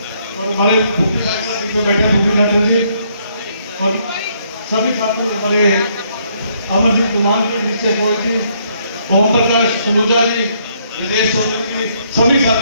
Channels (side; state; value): both; inverted; correlation -0.70